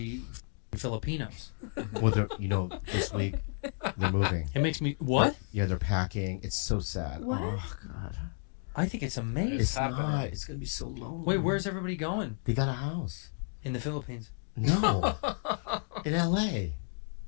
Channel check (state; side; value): silent; right; 56 dB below the other